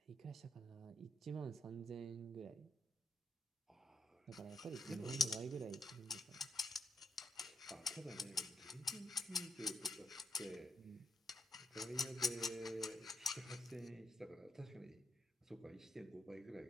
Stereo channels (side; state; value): both; normal; correlation 0.79